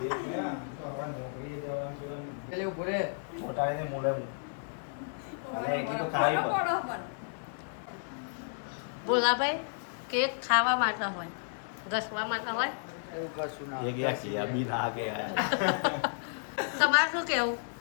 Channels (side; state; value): right; silent; 56 dB below the other